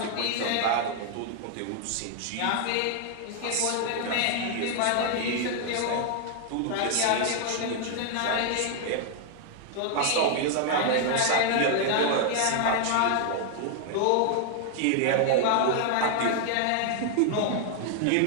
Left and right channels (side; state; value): both; different; correlation 0.00